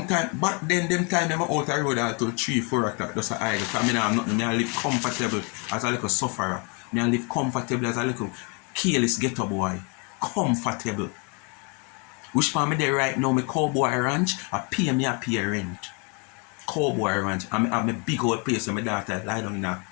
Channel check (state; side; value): quieter; right; 34.4 dB